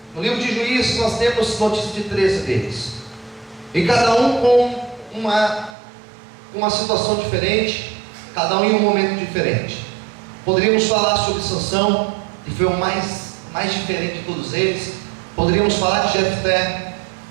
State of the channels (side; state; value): left; drops out; at 5.8 s